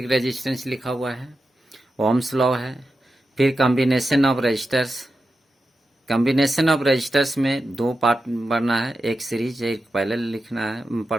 resistance लिखा हुआ है, ओम्स लॉ है, फिर combination of resistors. Combination of resistors में दो पार्ट पढ़ना है, एक सीरीज एक पैरेलल लिखना है,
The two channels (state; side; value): normal; both; correlation 0.90